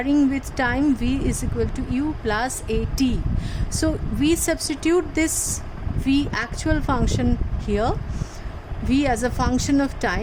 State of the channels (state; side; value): identical; both; correlation 1.00